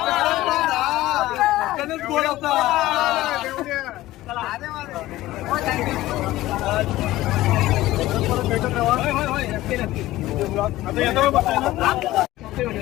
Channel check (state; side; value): quieter; right; 16.5 dB